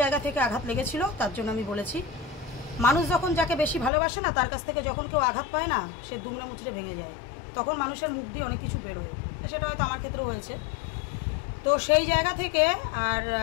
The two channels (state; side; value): drops out; right; at 3.9 s